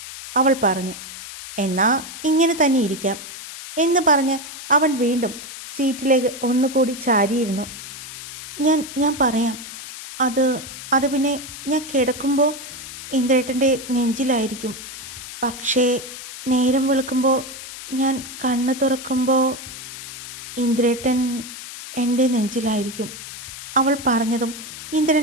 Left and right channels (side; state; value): left; noise; hiss, 12 dB below the sound